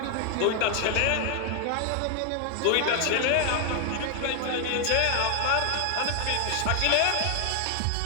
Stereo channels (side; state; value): both; different; correlation 0.00